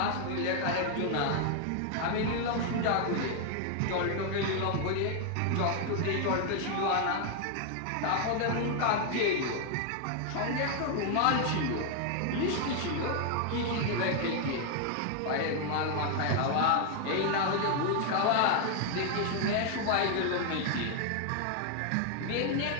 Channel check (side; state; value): both; different; correlation 0.00